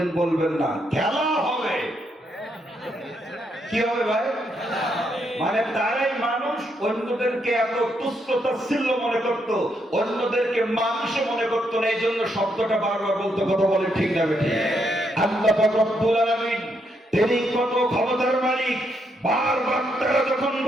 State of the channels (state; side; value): normal; both; correlation 0.77